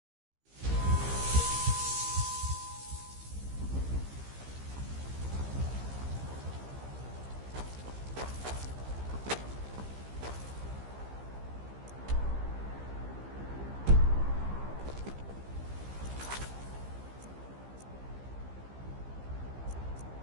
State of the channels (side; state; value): left; late; 15 ms